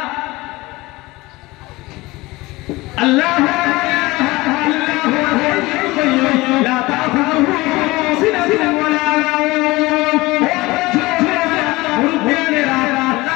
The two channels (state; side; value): quieter; right; 20.9 dB